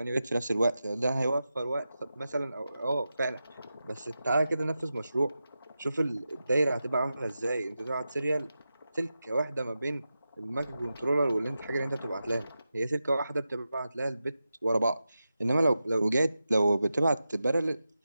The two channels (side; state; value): both; inverted; correlation -0.91